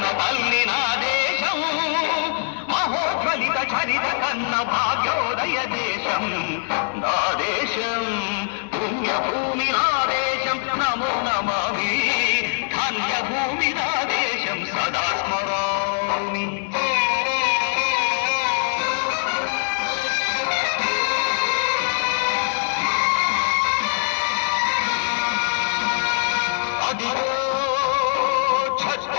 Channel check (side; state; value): right; silent; digital silence